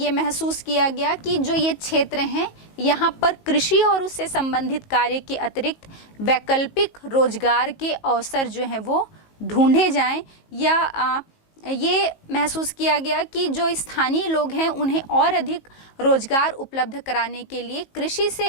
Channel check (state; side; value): late; right; 19 ms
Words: महसूस किया गया कि जो ये क्षेत्र हैं यहाँ पर कृषि और उससे संबंधित कार्य के अतिरिक्त वैकल्पिक रोजगार के अवसर जो हैं वो ढूंढे जाएं या ये महसूस किया गया कि जो स्थानीय लोग हैं उन्हें और अधिक रोजगार उपलब्ध कराने के लिए कृषि